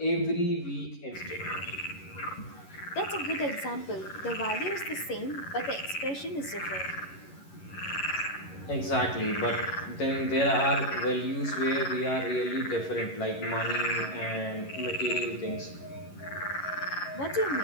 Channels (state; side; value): late; right; 11 ms